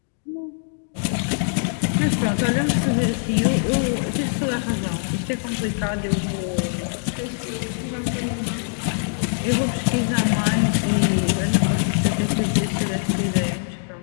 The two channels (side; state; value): right; silent; digital silence